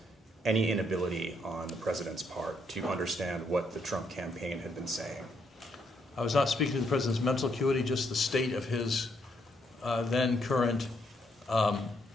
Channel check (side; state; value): both; normal; correlation 0.74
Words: any inability on the president's part to understand what the Trump campaign had been saying? I was not speaking to the president's mental acuity, just the state of his then current